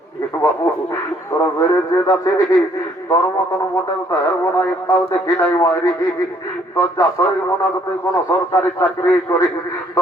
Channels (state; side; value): normal; both; correlation 0.65